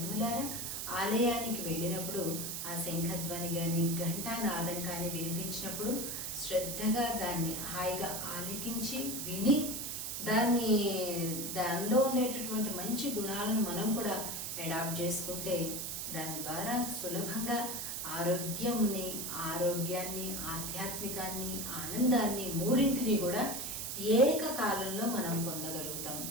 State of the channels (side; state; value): right; noise; hiss, 4 dB below the sound